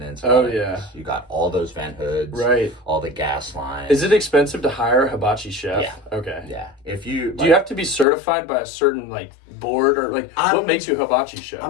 You got all those vent hoods. Right. All the gas lines. Is it expensive to hire a hibachi chef? Yeah. Okay. Yeah. Do you have to be certified by a certain board, or what makes you a hibachi chef?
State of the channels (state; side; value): drops out; right; at 8.1 s